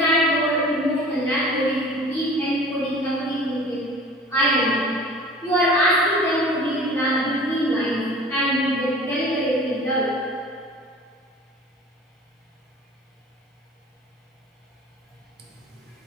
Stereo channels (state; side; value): normal; both; correlation 0.43